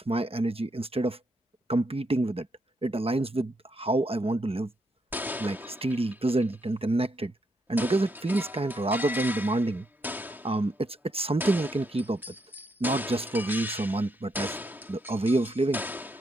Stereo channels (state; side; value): normal; both; correlation 0.78